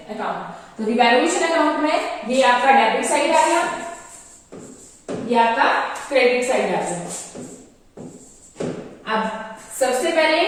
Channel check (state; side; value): identical; both; correlation 1.00